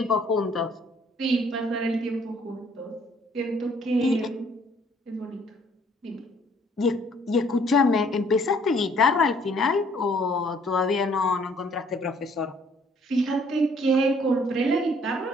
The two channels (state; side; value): normal; both; correlation 0.61